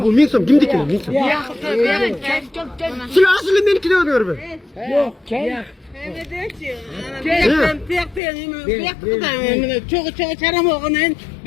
бұл 1000 сом? Кимдікі 1000 сом? Сілер асылы менікі де өңір бі? Yok, gel. Çok çaram oğunen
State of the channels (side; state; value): right; drops out; at 8.2 s